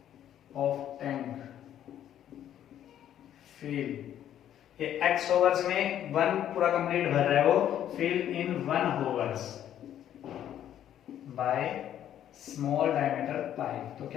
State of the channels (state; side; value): quieter; right; 10.8 dB